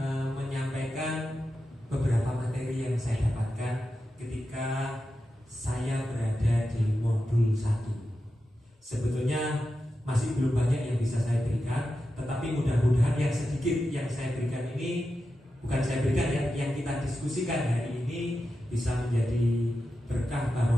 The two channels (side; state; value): both; normal; correlation 0.90